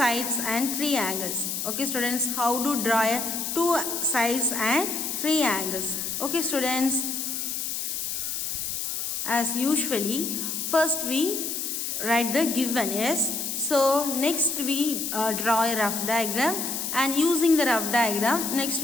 and three angles. Okay students, how to draw a two sides and three angles? Okay students, as usually first we write the given. Yes, so next we draw a rough diagram, and using the rough diagram next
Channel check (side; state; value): left; noise; hiss, 3 dB below the sound